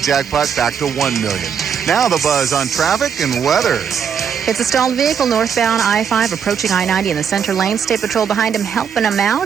jackpot back to $1 million. Now the Buzz on traffic and weather. It's a stalled vehicle northbound I-5 approaching I-90 in the center lane. State Patrol behind him helping him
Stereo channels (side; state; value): left; quieter; 7.4 dB